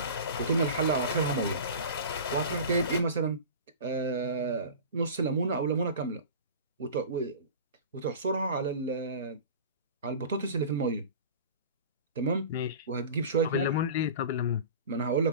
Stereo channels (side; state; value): both; inverted; correlation -0.35